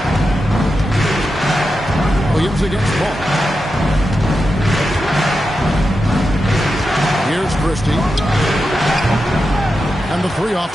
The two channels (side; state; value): both; normal; correlation 0.89